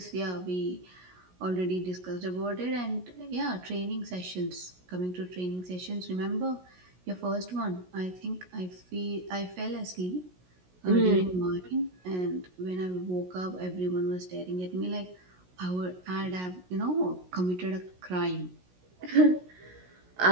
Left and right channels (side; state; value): left; late; 16 ms